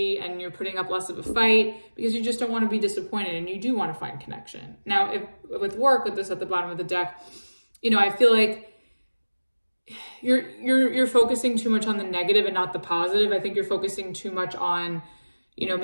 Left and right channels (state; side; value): inverted; both; correlation -1.00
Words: and you're putting up less of a fight, because you just don't want to be disappointed and you do want to find connection. Now, if with work, with this at the bottom of the deck, you know, I feel like you're focusing too much on the negative and not the positive. I think you're focusing too much on, you know,